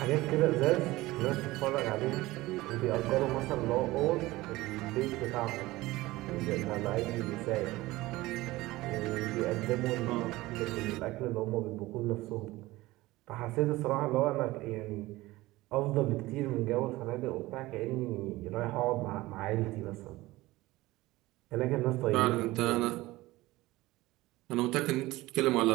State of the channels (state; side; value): quieter; left; 18.9 dB